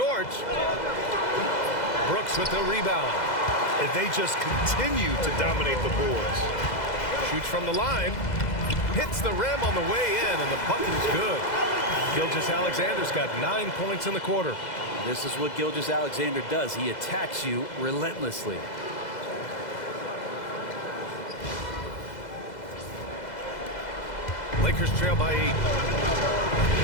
Brooks with the rebound. And they just continue to dominate the boards. Shoots from the line. Hits the rim on the way in, and the bucket is good. Gilgeous-Alexander's got 9 points in the quarter. This is what Gilgeous-Alexander does. He attacks you relentlessly. Lakers trail by 8.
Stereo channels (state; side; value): late; right; 2.0 ms